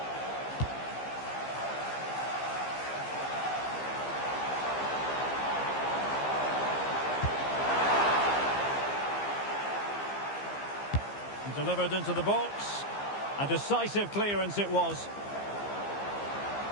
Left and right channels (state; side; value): late; right; 15 ms